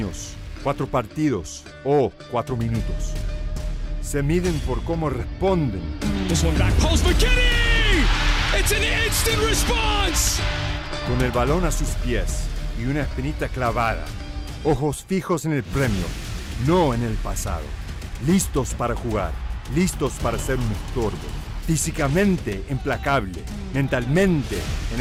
4 partidos o 4 minutos. Se miden por cómo responden. This one back post McKinney! It's an instant response! Con el balón a sus pies y una espinita clavada. Ojos fijos en el premio, no en el pasado. Listos para jugar, listos para ser un estorbo. Físicamente implacable, mentalmente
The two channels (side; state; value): both; identical; correlation 1.00